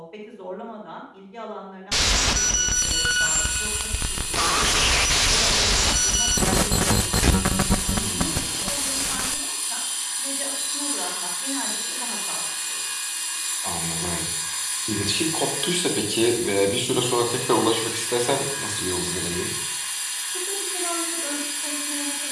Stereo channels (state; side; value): identical; both; correlation 1.00